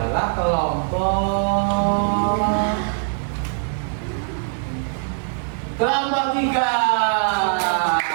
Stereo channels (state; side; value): silent; left; digital silence